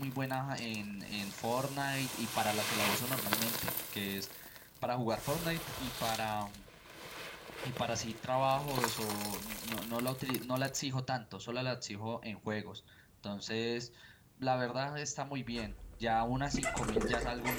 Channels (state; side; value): identical; both; correlation 1.00